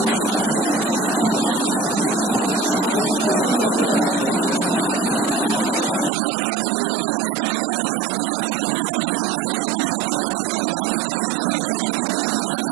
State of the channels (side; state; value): left; drops out; at 6.1 s